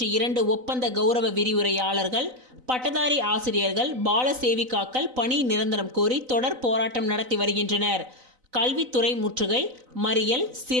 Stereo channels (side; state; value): left; late; 4.0 ms